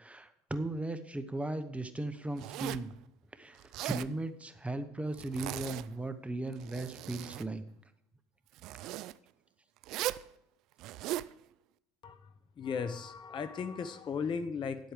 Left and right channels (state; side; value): normal; both; correlation 0.68